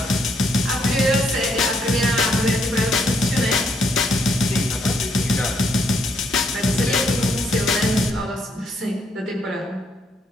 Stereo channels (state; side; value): normal; both; correlation 0.73